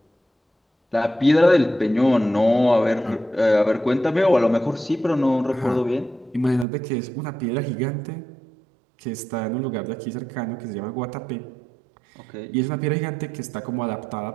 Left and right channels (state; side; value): drops out; left; at 6.7 s